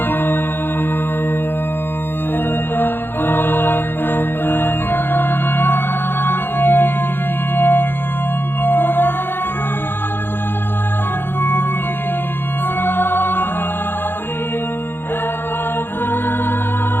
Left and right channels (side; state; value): right; late; 0.10 ms